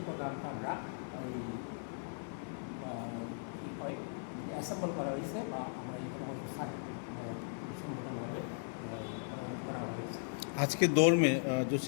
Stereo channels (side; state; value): right; silent; 53 dB below the other